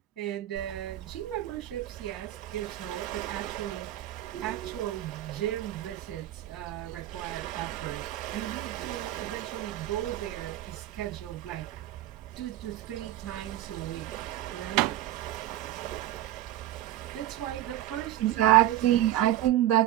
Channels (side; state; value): left; quieter; 13.7 dB